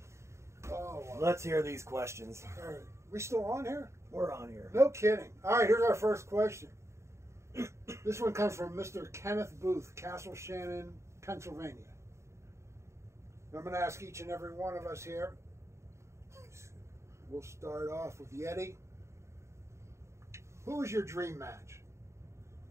Oh, wow. Let's hear these questions. All right. We still on here? We're on here. No kidding. All right, here's our first question. This one comes from Mr. Kenneth Booth, Castle Shannon, Pennsylvania. I'm going to ask each and every one of us here. We'll start off with Yeti. Who was your dream match?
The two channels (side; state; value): left; late; 0.14 ms